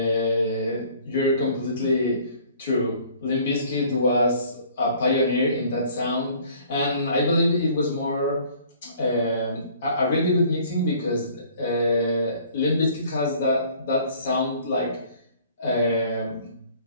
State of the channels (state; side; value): inverted; both; correlation -0.54